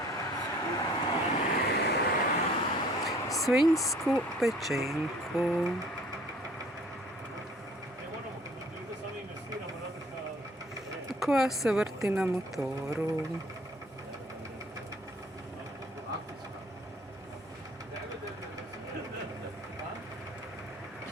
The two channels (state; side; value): normal; both; correlation 0.54